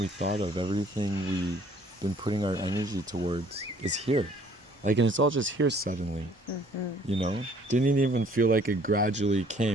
thought of, everything we've been putting our energy towards is here. Like, and it's all just here suddenly, you know? Didn't even feel like it gradually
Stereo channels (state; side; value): normal; both; correlation 0.58